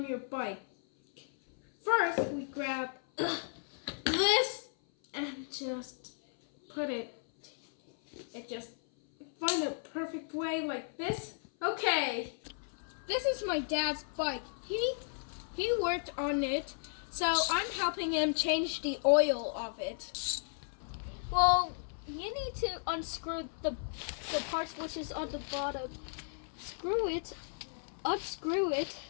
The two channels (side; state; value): right; silent; 55 dB below the other